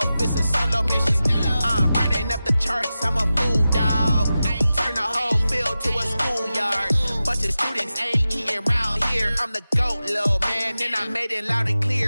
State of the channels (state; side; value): inverted; both; correlation -0.94